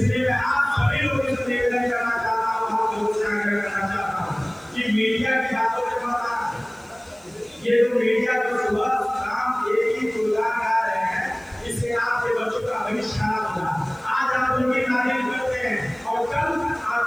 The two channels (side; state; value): right; noise; hiss, 28 dB below the sound